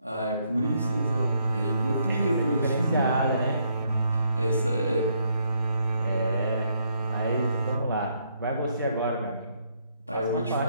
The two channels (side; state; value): both; inverted; correlation -0.73